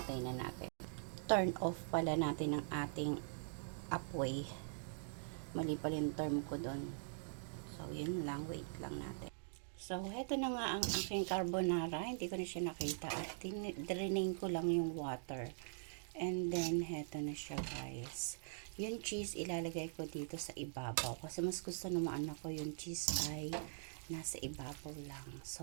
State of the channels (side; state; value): left; silent; digital silence